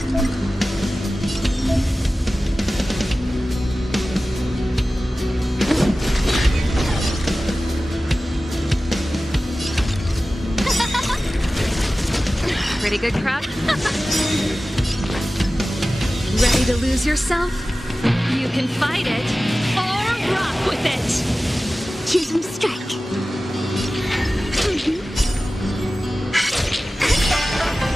Pretty good crowd. Ready to lose yourself? You can fight it, or rock with it! Choose from strike.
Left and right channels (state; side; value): normal; both; correlation 0.96